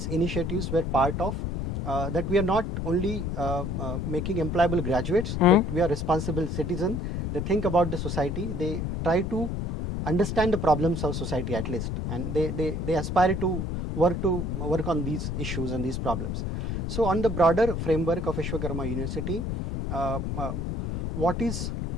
initiatives were part of that. We are not only making employable graduates, but we are responsible citizens. They think about the society, they try to understand the problems of society at least, and they aspire to work on these issues and these problems. So on the broader framework of Vishwakarma University, what is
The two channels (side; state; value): left; noise; rumble, 2 dB below the sound